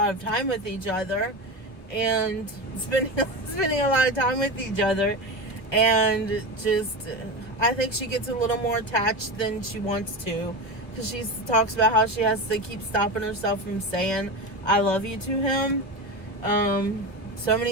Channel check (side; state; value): right; late; 1.5 ms